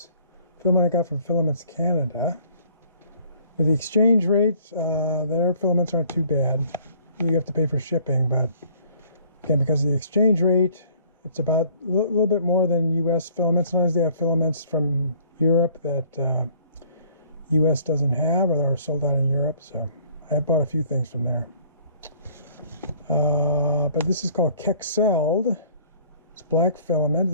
filament I got from Filaments Canada. With the exchange rate, their filaments aren't too bad. You have to pay for shipping, but again, because of the exchange rate, it's about a little bit more than US filaments. Sometimes they have filaments from Europe that US doesn't have, or they're sold out in Europe. So I bought a few things from there. But this is called Kexeld. It's black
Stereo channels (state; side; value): inverted; both; correlation -0.57